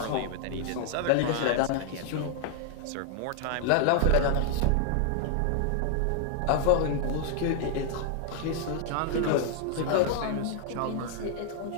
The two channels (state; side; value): different; both; correlation 0.00